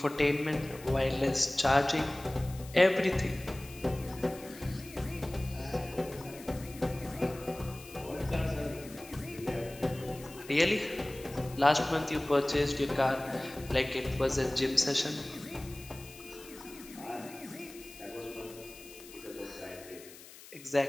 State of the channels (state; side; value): noise; left; hiss, 18 dB below the sound